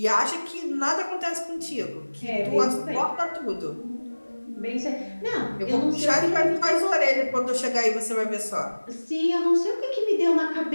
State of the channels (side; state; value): both; inverted; correlation -1.00